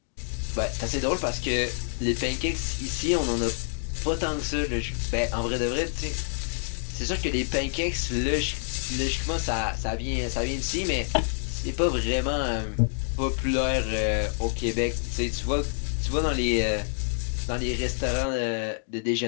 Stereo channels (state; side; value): silent; right; digital silence